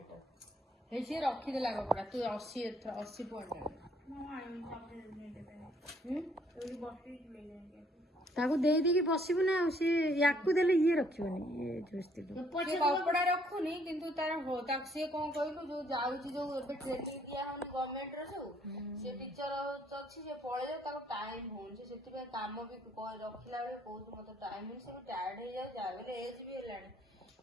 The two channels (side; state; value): both; normal; correlation 0.65